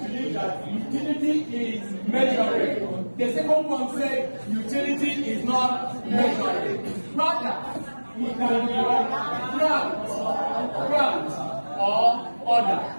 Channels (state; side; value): inverted; both; correlation -1.00